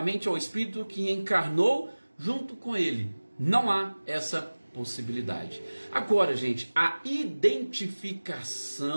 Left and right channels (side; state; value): both; inverted; correlation -1.00